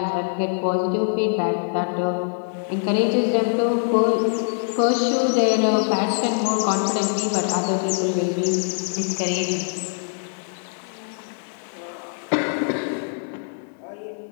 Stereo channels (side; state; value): right; silent; digital silence